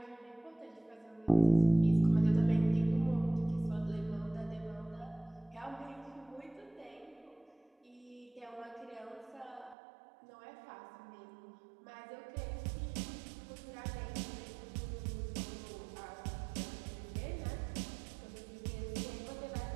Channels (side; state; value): left; drops out; at 9.8 s